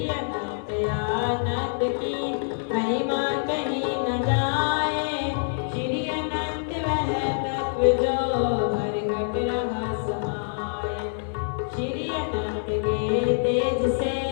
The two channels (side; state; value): right; silent; 58 dB below the other